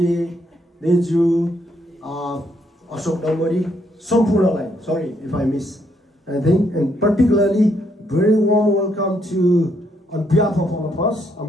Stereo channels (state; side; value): normal; both; correlation 0.73